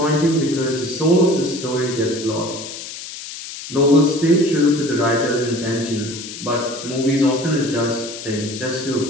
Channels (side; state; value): left; noise; hiss, 11 dB below the sound